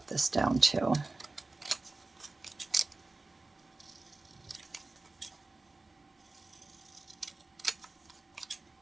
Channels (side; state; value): left; quieter; 3.3 dB